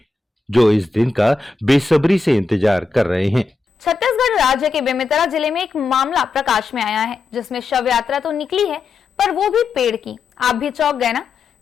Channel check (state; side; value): quieter; right; 4.0 dB